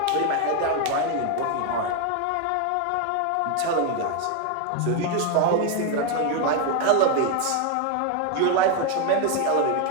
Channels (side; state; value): both; different; correlation 0.01